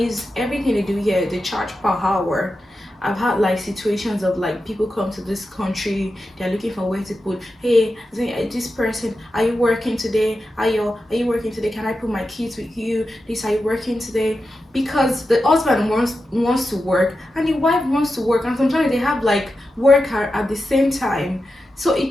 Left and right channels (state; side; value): normal; both; correlation 0.90